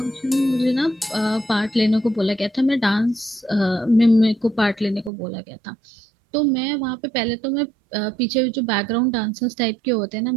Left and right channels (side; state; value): left; drops out; at 5.1 s